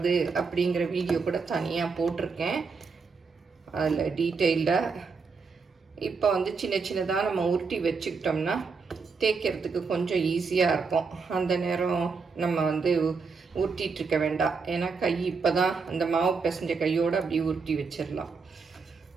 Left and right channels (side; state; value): left; quieter; 5.0 dB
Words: அப்படிங்கிற வீடியோ கூட தனியாக போட்டிருக்கேன், அதில் டீட்டெயில்டாக. இப்போ வந்து சின்ன சின்னதாக நம்ம உருட்டி வச்சுக்கிட்டோம்னா தேய்க்கிறதுக்கு கொஞ்சம் ஈஸியாக இருக்கும். அந்த நேரம் நம்ம வந்து உருட்டிகிட்ருக்க வேண்டாம். ஏன்னா கை இப்போ தான் அந்த மாவு பிசைஞ்ச கையோடு அப்படியே உருட்டி வச்சிடலாம்.